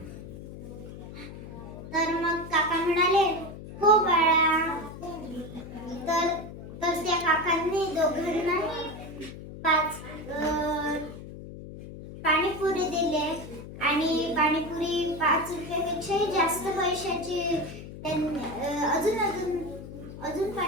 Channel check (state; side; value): noise; left; hum, 12 dB below the sound